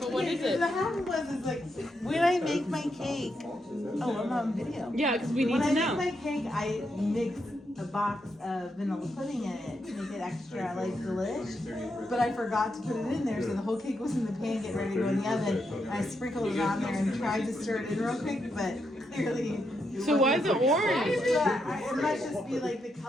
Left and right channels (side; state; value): both; normal; correlation 0.82